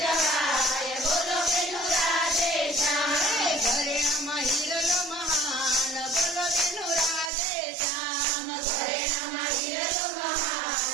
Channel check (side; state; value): left; drops out; at 7.3 s